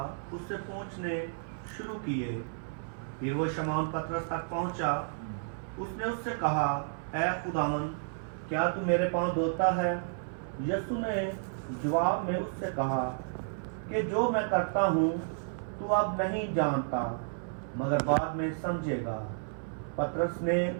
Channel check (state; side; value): silent; left; 56 dB below the other